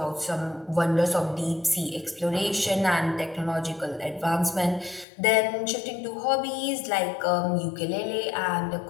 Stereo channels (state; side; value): drops out; right; at 5.1 s